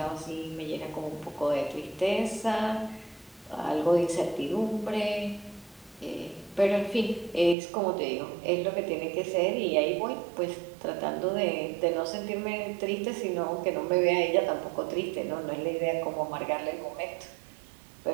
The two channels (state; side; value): drops out; left; at 7.6 s